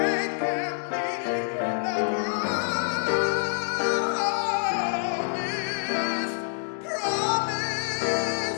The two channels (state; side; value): silent; right; digital silence